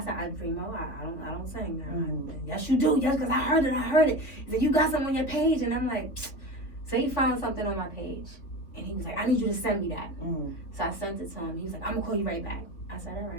Remo, I don't sing now. Yes, you do. Yes, because I heard it. He said, you got something on your page. And I'm like, so he found something on my page. And he was like, I need you to send me that. So I sent it to him. He was like, I'm going to call you right back. I said, all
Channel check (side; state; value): right; late; 3.7 ms